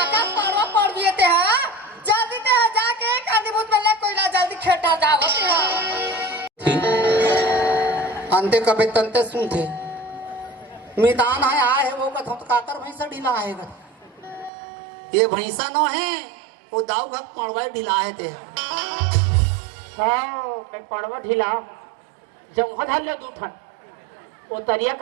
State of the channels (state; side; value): drops out; left; at 14.5 s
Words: पारवा पड़ दिए थे हां जल्दी ते जाके कांदी भूत में ले कोइला जल्दी खेटा जाओ ते अंते कबे तंते सुनते मितान आए वो कथो तो काकर भैंसा ढीला आएगा ये भैंसा न है वो दाव घक पड़वा ढीला है थे हाँ मैं पड़वा ढीला जब वहाँ धर ले दूठन वो तरिया